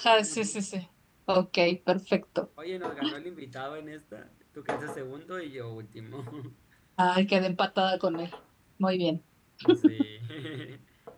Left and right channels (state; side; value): identical; both; correlation 1.00